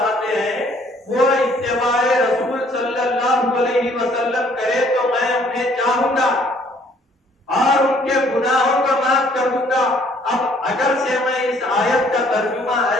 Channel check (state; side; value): normal; both; correlation 0.61